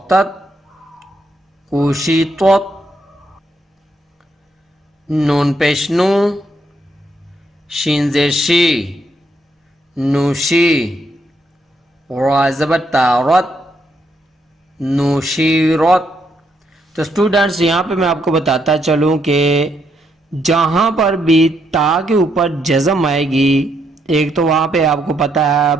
کوشی طت، نون پیش نو، شین زیر شی، نوشی، را زبر تارت، نوشیرت۔ تو اسٹوڈنٹس، یہاں پہ میں آپ کو بتاتا چلوں کہ جہاں پر بھی تا کے اوپر جزم آئے گی، ایک تو وہاں پہ آپ کو پتہ ہے اب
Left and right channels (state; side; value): normal; both; correlation 0.76